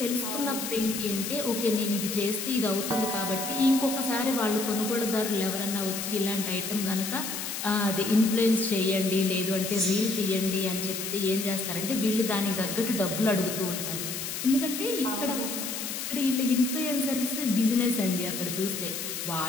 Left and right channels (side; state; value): left; noise; hiss, 5 dB below the sound